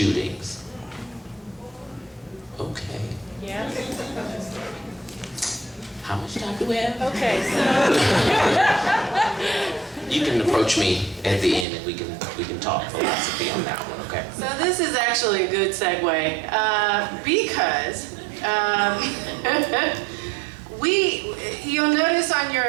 Okay. Yeah. How much time do we have? Okay, You can approach me at the end and we can talk philosophy on that one, okay? So this is actually a good segue because you'll notice on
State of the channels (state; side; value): drops out; left; at 11.7 s